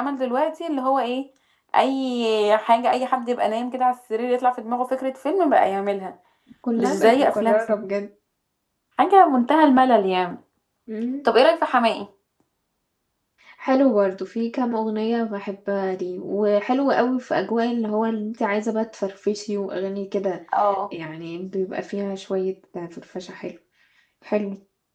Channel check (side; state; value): both; identical; correlation 1.00